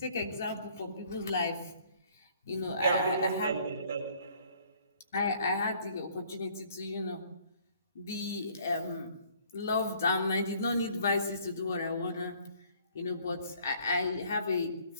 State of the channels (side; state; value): both; inverted; correlation -0.59